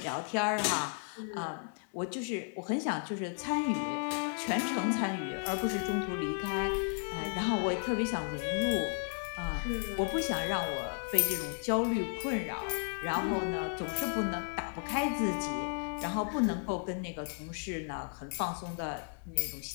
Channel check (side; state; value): right; silent; 55 dB below the other